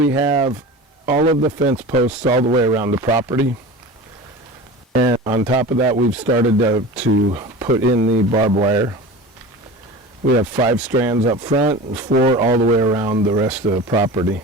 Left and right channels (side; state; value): both; normal; correlation 0.33